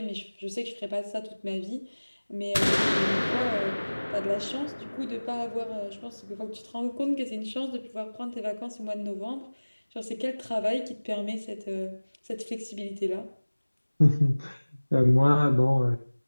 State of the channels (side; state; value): both; inverted; correlation -1.00